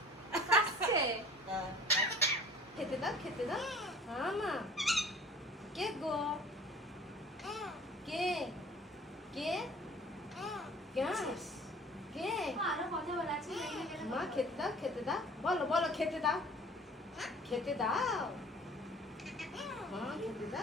কাশছে। খেতে দাও, খেতে দাও। হ্যাঁ মা। কে গো? কে? কে? কে? আরো কথা বলা আছে। মা খেতে দাও, খেতে দাও। বলো বলো খেতে দাও, খেতে দাও। মা খেতে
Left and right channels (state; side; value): normal; both; correlation 0.47